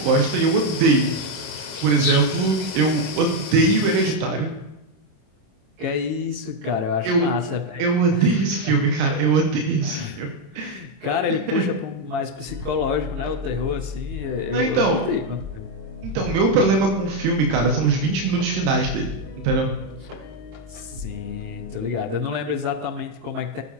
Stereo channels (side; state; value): left; late; 26 ms